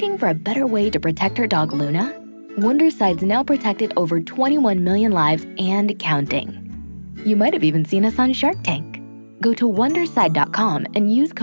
for a better way to protect her dog Luna, Wondercide's now protected over 21 million lives and counting. You might have even seen us on Shark Tank. Go to Wondercide.com and use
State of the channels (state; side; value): inverted; both; correlation -1.00